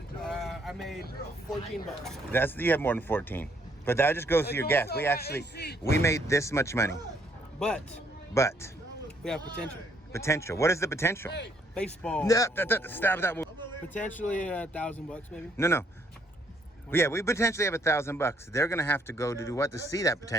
I made $14. You have more than 14, but that just goes to your gas. We made this much money, But but we have potential. potential. What is the potential? Baseball. No, stop that. Potentially $1,000 maybe. No. Yeah, we potentially have $1,000. They're gonna have to go to do what to see that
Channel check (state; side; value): normal; both; correlation 0.69